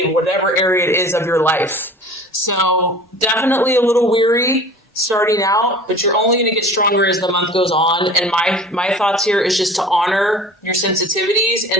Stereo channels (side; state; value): both; normal; correlation 0.42